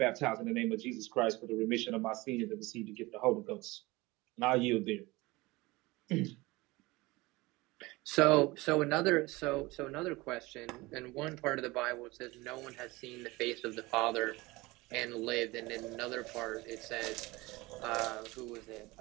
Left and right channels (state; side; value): quieter; left; 21.9 dB